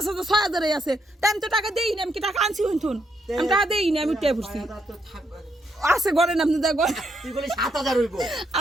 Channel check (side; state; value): both; normal; correlation 0.77